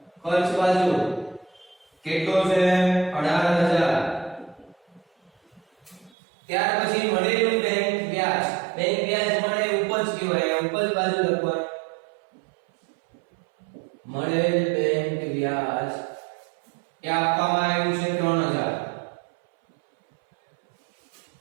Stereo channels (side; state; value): left; drops out; at 6.1 s